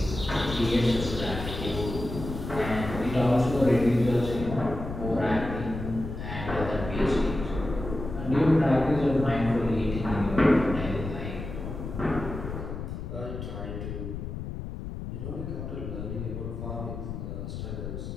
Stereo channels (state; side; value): noise; left; rumble, 7 dB below the sound